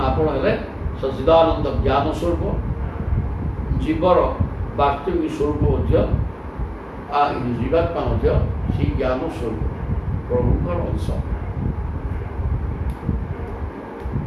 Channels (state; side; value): identical; both; correlation 1.00